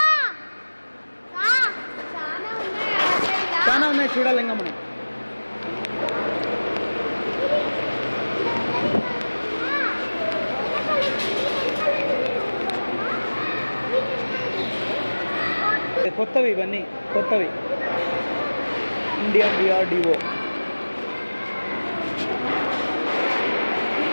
చాలా ఉన్నాయి చూడాలి ఇంకా మనం. కొత్తవి, ఇవన్నీ కొత్తవి. Indian DRDO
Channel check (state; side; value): inverted; both; correlation -1.00